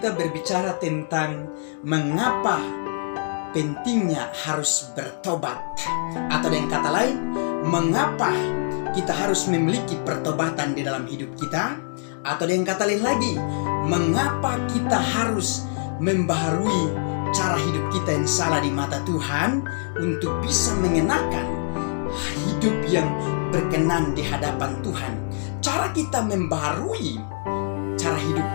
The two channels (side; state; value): right; silent; digital silence